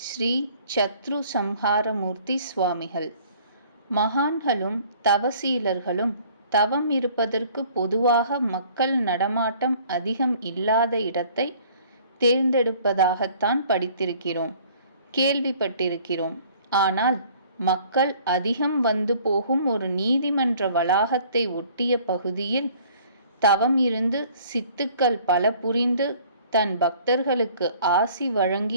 ஸ்ரீ சத்ரு சம்ஹாரமூர்த்தி சுவாமிகள். மகான்களும் தவசீலர்களும் தவம் இருப்பதற்கு பொதுவாக மக்கள் நடமாட்டம் அதிகம் இல்லாத இடத்தை தேர்ந்தெடுப்பதாகத்தான் படித்திருக்கிறோம், கேள்விப்பட்டிருக்கிறோம். ஆனால் மக்கள் அதிகம் வந்து போகும் ஒரு நீதிமன்ற வளாகத்தை ஒட்டிய பகுதியில் தவம் இருந்து சித்துக்கள் பல புரிந்து தன் பக்தர்களுக்கு ஆசி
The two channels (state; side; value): inverted; both; correlation -0.54